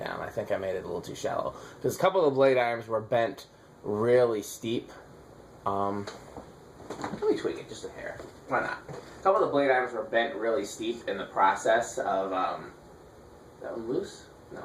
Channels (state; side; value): identical; both; correlation 1.00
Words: I think I made it a little too shallow. Because a couple of the blade arms were bent really steep. Let me tweak it just a hair. Why not? A couple of the blade arms were bent really steep in the process of, is that one loose?